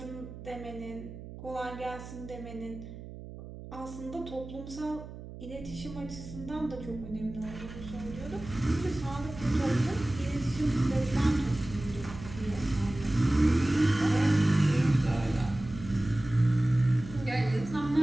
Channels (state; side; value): noise; right; hum, 13 dB below the sound